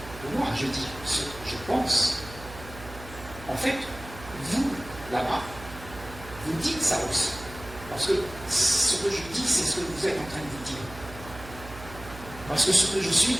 moi je dis ce que je pense. En fait, vous, là-bas, vous dites ça aussi. Parce que ce que je dis, c'est ce que vous êtes en train de vous dire. Parce que ce que je suis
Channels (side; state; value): right; noise; hum, 15 dB below the sound